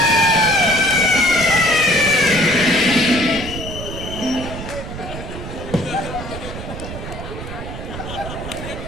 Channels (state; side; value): noise; right; rumble, 9 dB below the sound